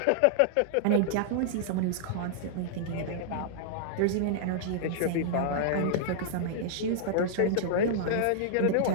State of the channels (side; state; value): both; different; correlation -0.01